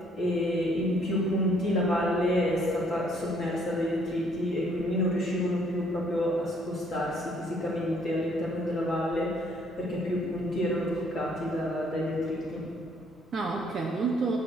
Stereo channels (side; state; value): both; normal; correlation 0.65